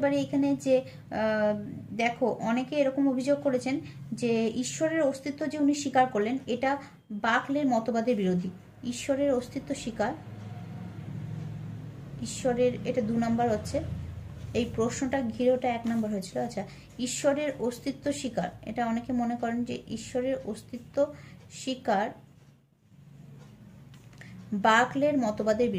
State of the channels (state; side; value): identical; both; correlation 1.00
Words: পারি এখানে যে দেখো অনেকে এরকম অভিযোগ করেছেন যে ঈশ্বরের অস্তিত্ব যে উনি স্বীকার করলেন এটা বাকলের মতবাদের বিরোধী। ঈশ্বরের অস্তিত্ব স্বীকার, ঈশ্বরের, এটা 2 নম্বর হচ্ছে, এই প্রশ্নটা ঘিরে ওটা 1 নম্বর হয়েছিল। আচ্ছা, ঈশ্বরের অস্তিত্ব স্বীকার, এটা অনেকে মনে করেন যে ঈশ্বরের অস্তিত্ব স্বীকার বাকলের মতবাদের